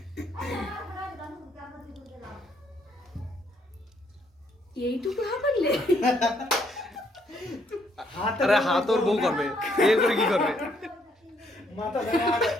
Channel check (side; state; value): both; normal; correlation 0.70